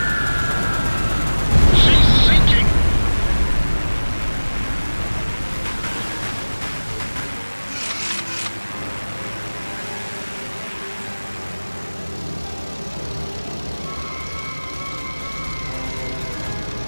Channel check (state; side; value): inverted; both; correlation -1.00